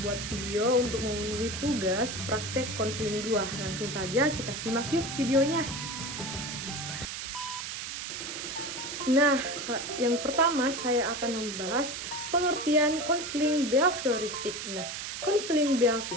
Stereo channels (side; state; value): right; noise; hiss, 6 dB below the sound